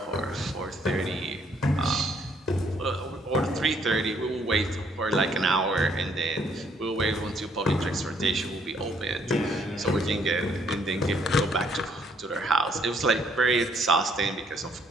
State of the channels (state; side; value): normal; both; correlation 0.66